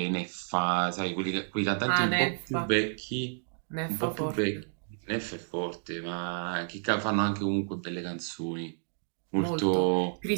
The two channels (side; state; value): left; silent; digital silence